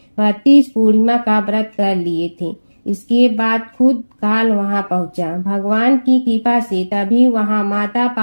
32 पूर्णिमा का व्रत कर लिए थे। इसके बाद खुद काल वहां पहुंचा। भगवान की कृपा से तभी वहां माता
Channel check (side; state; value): both; inverted; correlation -1.00